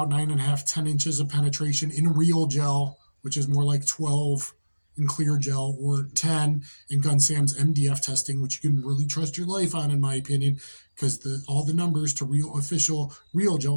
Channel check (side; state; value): both; inverted; correlation -1.00